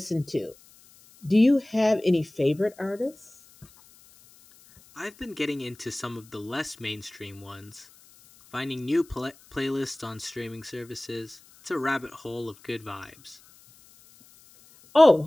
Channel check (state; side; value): noise; left; hiss, 26 dB below the sound